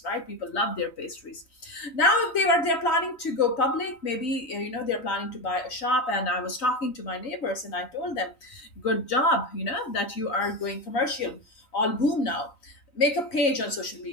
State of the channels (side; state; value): right; late; 3.9 ms